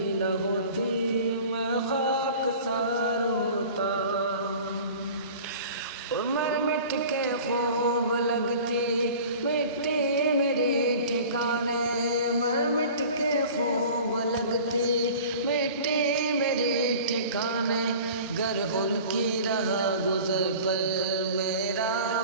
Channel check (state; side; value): inverted; both; correlation -0.42